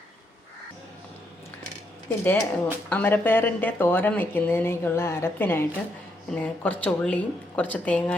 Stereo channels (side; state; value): both; normal; correlation 0.77